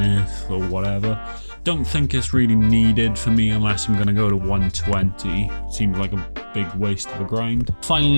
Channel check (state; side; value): inverted; both; correlation -1.00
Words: Earth or whatever. Don't think it's really needed for me unless I'm going to go to 120. Seems like a big waste of a grind.